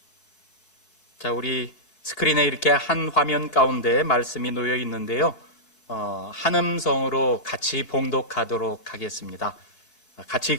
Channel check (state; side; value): late; right; 4.6 ms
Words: 자, 우리 스크린에 이렇게 한 화면 가운데 말씀이 놓여 있는데요. 한 음성으로 같이 봉독하도록 하겠습니다. 같이